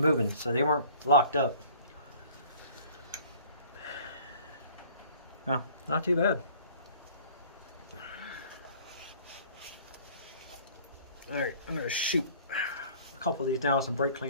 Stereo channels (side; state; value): both; inverted; correlation -0.51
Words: so they weren't locked up. No, not too bad. Alright, I'm going to shoot a couple of these down with some brake